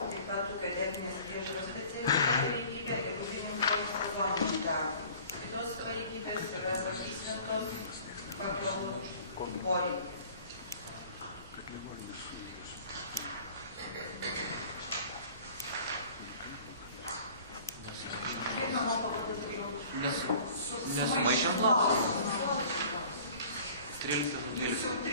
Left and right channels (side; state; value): both; inverted; correlation -0.47